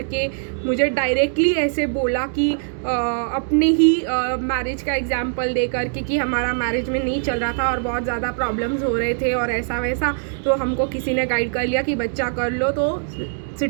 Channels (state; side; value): silent; left; 64 dB below the other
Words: के मुझे डायरेक्टली ऐसे बोला कि अपने ही मैरिज का एग्जाम्पल दे करके कि हमारा मैरिज में नहीं चल रहा था और बहुत ज़्यादा प्रॉब्लम्स हो रहे थे और ऐसा वैसा, तो हमको किसी ने गाइड कर लिया कि बच्चा कर लो तो